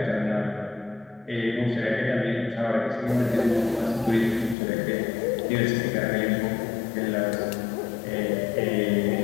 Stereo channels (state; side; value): drops out; right; at 4.5 s